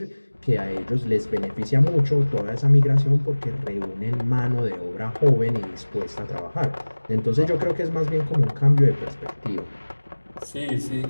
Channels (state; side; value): inverted; both; correlation -1.00